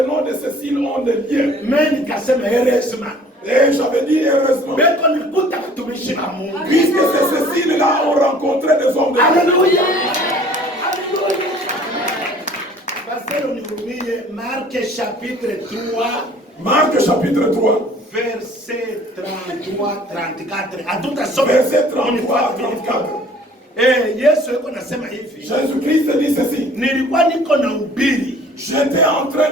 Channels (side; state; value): both; normal; correlation 0.52